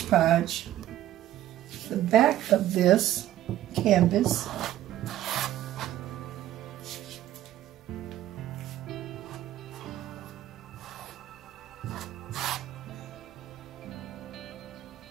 Podge the back of this canvas.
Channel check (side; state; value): left; quieter; 13.3 dB